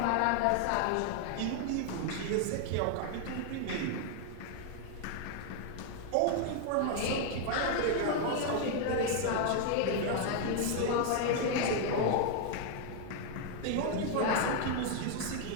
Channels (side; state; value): both; different; correlation 0.00